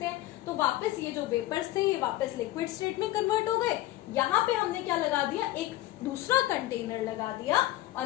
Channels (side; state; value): right; quieter; 16.0 dB